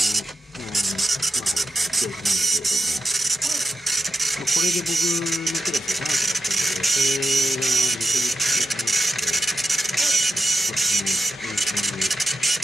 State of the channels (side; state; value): both; normal; correlation 0.90